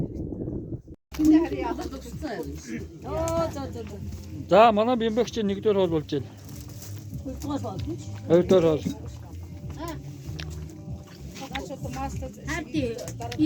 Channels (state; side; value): identical; both; correlation 1.00